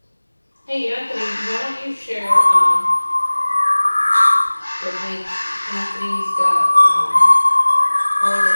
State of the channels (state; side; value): inverted; both; correlation -1.00